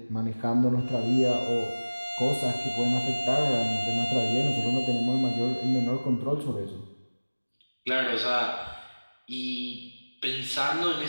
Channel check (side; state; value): both; inverted; correlation -1.00